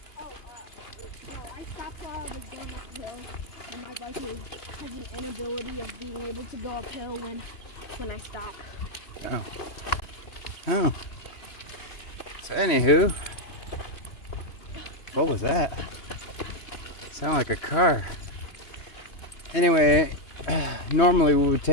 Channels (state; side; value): late; right; 2.9 ms